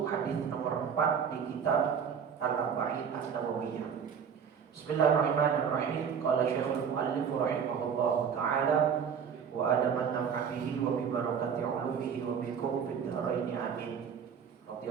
hadis nomor 4 di kitab Al-Arba'in An-Nawawiyah. Bismillahirrahmanirrahim. Qala Syekhul Mu'allif rahimahullahu ta'ala wa adaman naf'ihi wa bi barakati ulumihi wa bikum fid dharain amin.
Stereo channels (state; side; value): quieter; left; 7.2 dB